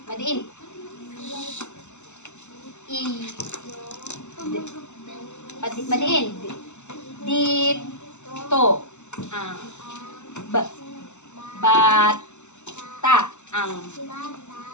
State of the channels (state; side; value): late; right; 0.83 ms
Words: Madiin. I. Madiin. Dit. To. B. Bat. Ta. Ang.